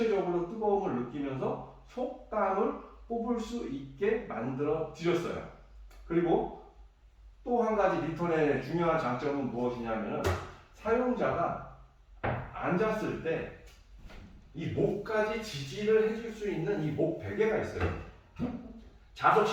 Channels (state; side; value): identical; both; correlation 1.00